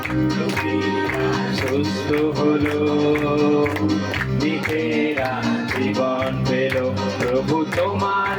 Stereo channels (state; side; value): identical; both; correlation 1.00